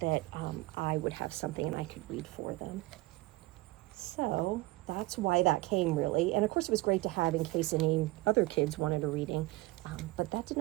I would have something and I could read for them. So that's why that came, really. And of course it was great to have in case any other kids wanted a reading, but that did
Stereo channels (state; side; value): quieter; left; 21.1 dB